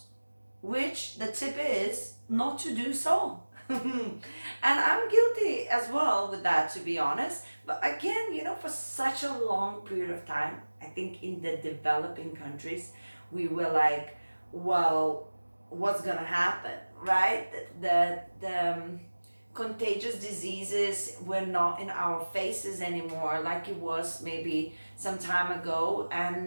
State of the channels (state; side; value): inverted; both; correlation -1.00